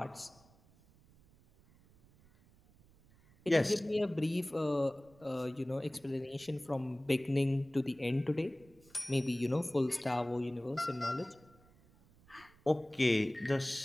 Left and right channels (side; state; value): right; noise; rumble, 28 dB below the sound